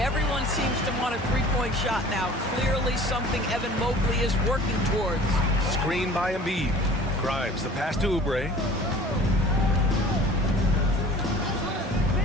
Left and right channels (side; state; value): both; normal; correlation 0.46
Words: seems to want a three-point shot now. Clearly something Evan Mobley is working towards. Screen by Embiid. Grimes, the pass to Oubre.